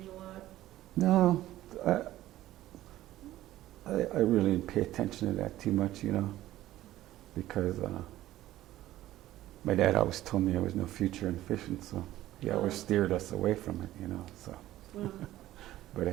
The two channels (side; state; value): left; quieter; 14.7 dB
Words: a lot? no, I really didn't pay attention to that too much, you know, because my dad always told me there was no future in fishing, so he always steered us away from it, you know. So, Wow. but